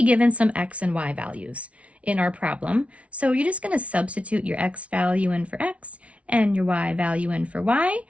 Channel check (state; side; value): late; left; 0.063 ms